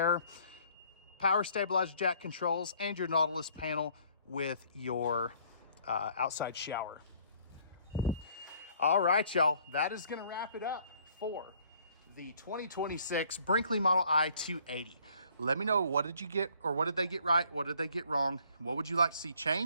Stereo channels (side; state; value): both; inverted; correlation -0.60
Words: power stabilizer jack controls, and your Nautilus panel with your outside shower. All right, y'all, that is going to wrap it up for the 2026 Brinkley Model I 280. Let me know, what did you get, or what did they get right? What did they get wrong? What would you like to see